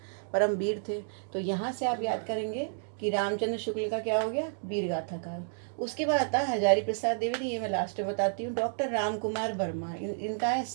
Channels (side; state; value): left; silent; digital silence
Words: परम वीर थे। तो यहाँ से आप याद करेंगे कि रामचंद्र शुक्ल का क्या हो गया, वीरगाथा काल। उसके बाद आता है हजारी प्रसाद द्विवेदी, ये मैं लास्ट में बताती हूँ। डॉक्टर रामकुमार वर्मा, इनका है